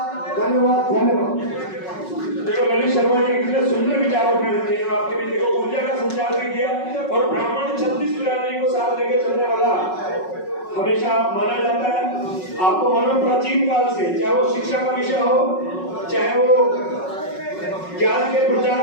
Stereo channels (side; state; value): right; late; 5.4 ms